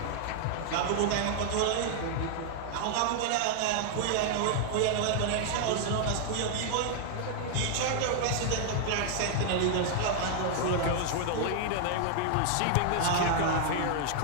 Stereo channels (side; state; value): both; different; correlation 0.00